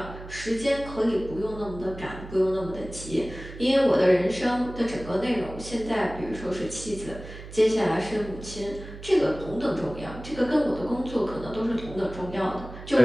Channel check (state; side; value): noise; right; hum, 14 dB below the sound